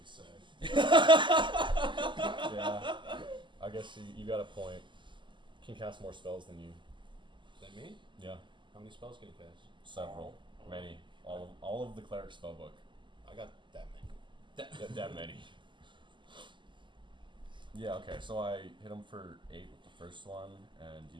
say. Yeah. I guess you got a point. Can cast more spells than you. Is that me? Yeah. How many spells can you cast? Several. Many. All of the cleric spellbook. I got that many. That many. Yeah, okay, so I hit him for 8 with the first one, and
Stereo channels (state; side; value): late; left; 0.23 ms